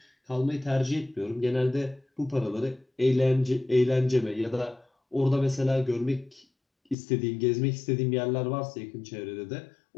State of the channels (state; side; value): drops out; right; at 7.0 s